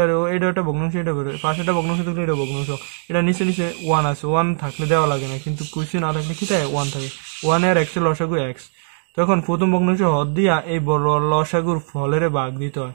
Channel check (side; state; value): left; silent; digital silence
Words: একটা ভগ্নাংশ, এটা বেরোয় পাশে একটা ভগ্নাংশ থাকলে এটা ভগ্নাংশ, এটা নিচে 1 আছে, 1 থাকলে দেওয়া লাগে না, কিন্তু কুইসি না থাকলে কি থাকে 1 থাকে, 1 আর x এর লসাগু x। তখন প্রথম ভগ্নাংশ হর দিয়া এই বড় লসাগুর ফলের ভাগ দিতে হয়,